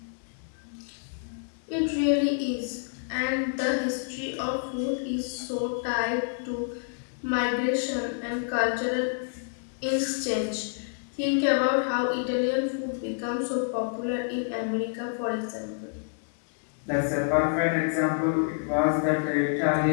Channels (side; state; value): right; silent; digital silence